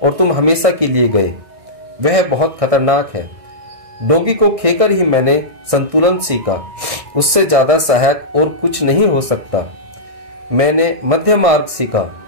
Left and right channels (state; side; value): late; left; 1.6 ms